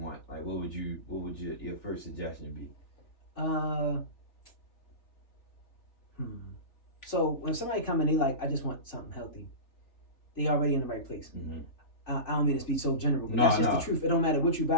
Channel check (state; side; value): late; right; 3.4 ms